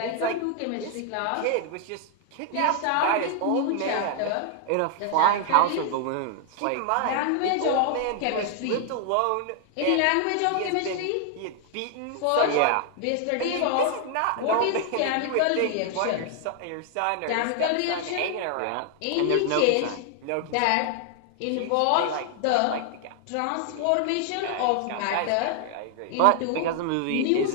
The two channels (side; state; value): both; different; correlation 0.00